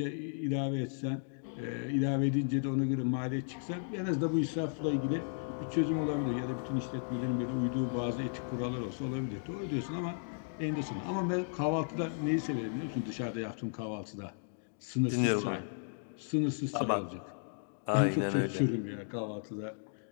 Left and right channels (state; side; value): silent; right; digital silence